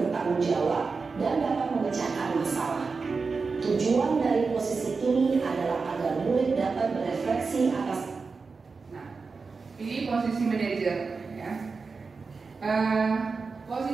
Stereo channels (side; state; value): left; quieter; 4.6 dB